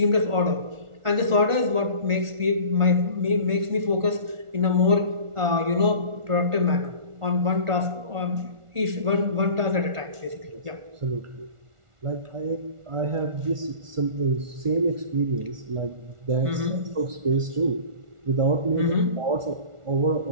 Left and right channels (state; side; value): late; left; 1.4 ms